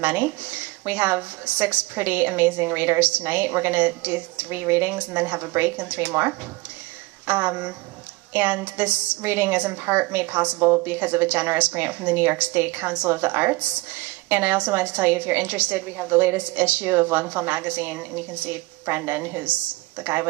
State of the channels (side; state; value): left; quieter; 22.2 dB